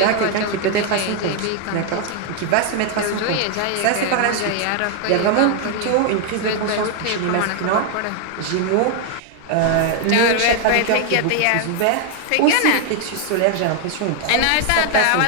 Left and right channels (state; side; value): different; both; correlation 0.00